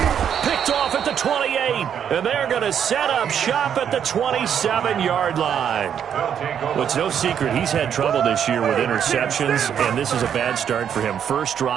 Picked off at the 28, and they're going to set up shop at the 27-yard line. Well, it's no secret he's had trouble this year with interceptions, and this is a bad start for him. First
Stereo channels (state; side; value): quieter; left; 8.6 dB